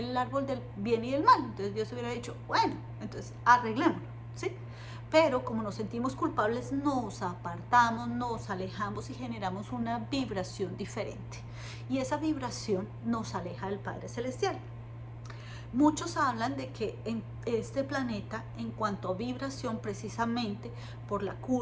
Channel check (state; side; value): identical; both; correlation 1.00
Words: árbol del bien y del mal. Entonces Dios hubiera dicho: bueno, entonces arreglémoslo, ¿sí? Pero como nos sentimos culpables, nos apartamos, nos alejamos y generamos una vibración diferente, y esa vibración nos aleja del Padre Celestial. Muchos hablan de que en este planeta, en cuanto a vibración, precisamente por la